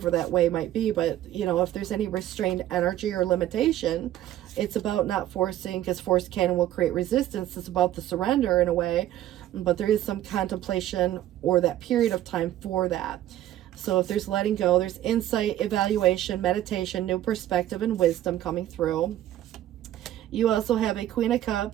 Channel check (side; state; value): left; quieter; 13.1 dB